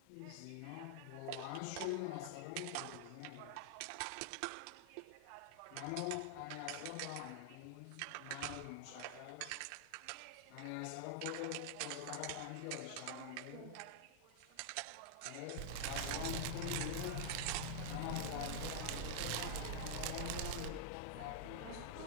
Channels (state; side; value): different; both; correlation -0.01